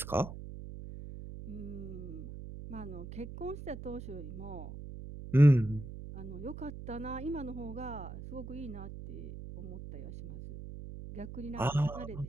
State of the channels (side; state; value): right; noise; hum, 10 dB below the sound